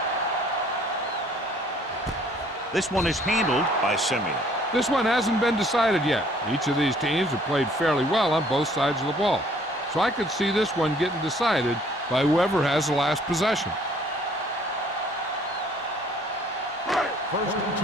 This one is handled by Simeon. This one hasn't been decided yet. Each of these teams have played fairly well on both sides of the ball. So I could see this one getting decided by whoever has the last possession. 1st and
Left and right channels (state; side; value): normal; both; correlation 0.58